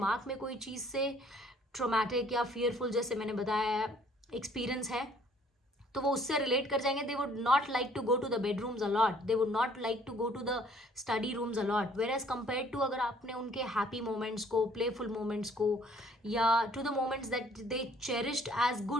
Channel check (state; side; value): normal; both; correlation 0.59